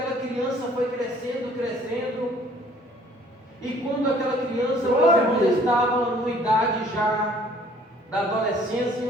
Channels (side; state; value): both; normal; correlation 0.57